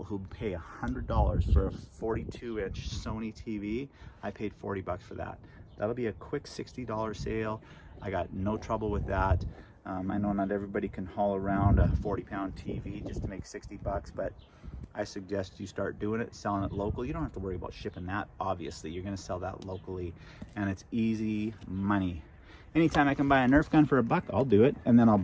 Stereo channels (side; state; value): both; identical; correlation 1.00